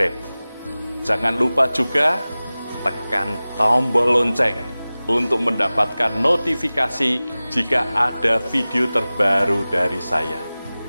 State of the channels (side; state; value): both; inverted; correlation -0.98